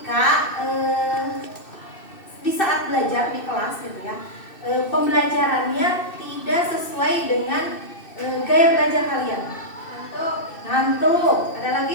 di saat belajar di kelas gitu ya, pembelajarannya tidak sesuai dengan gaya belajar kalian? Ngantuk. Ada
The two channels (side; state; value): right; late; 2.6 ms